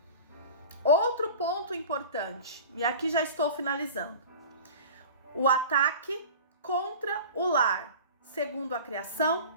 Outro ponto importante, e aqui já estou finalizando, o ataque contra o lar, segundo a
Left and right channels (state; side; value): inverted; both; correlation -0.38